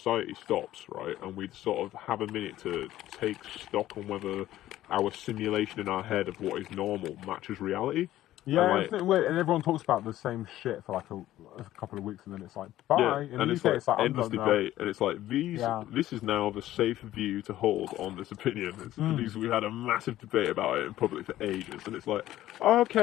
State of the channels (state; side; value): quieter; right; 14.1 dB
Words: stops, right? And we sort of have a minute to take stock on whether our simulation in our head of what is normal matches reality. Yeah, And, isn't it weird? And everyone talks about the same shit for like a couple of weeks, and then it's like, bye. Yeah, In and the it's UK, like I'm endless done now. debate, and it's like Yeah. this is now the safe view to hold on this opinion. Because we had a massive debate about it in public for ages, and it's like,